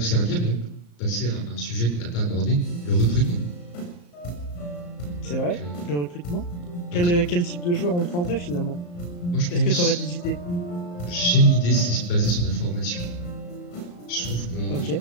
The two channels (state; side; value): late; right; 34 ms